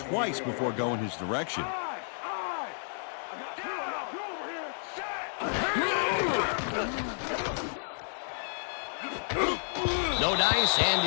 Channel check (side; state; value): right; silent; digital silence